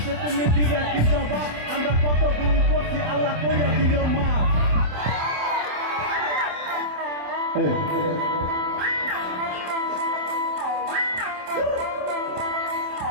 তুমি দিবে কি জবাব আমরা কত গুণ করছি আল্লাহ কইয়া দিও মা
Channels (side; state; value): left; late; 27 ms